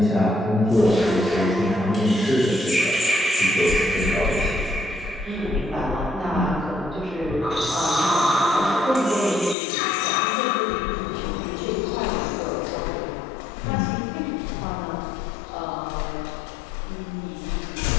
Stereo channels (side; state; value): right; drops out; at 9.6 s